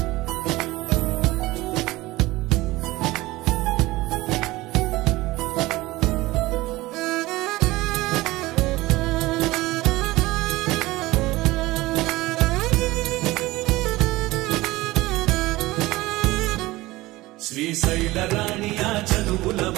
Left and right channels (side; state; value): left; quieter; 19.2 dB